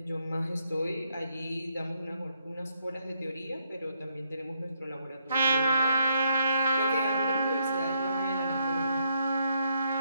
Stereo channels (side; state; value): both; inverted; correlation -0.76